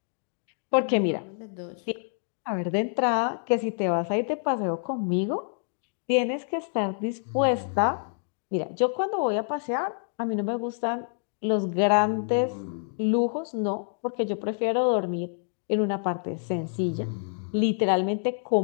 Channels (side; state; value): right; silent; digital silence